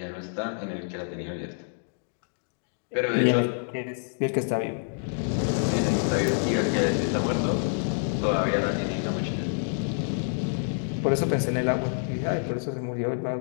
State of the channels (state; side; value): silent; right; digital silence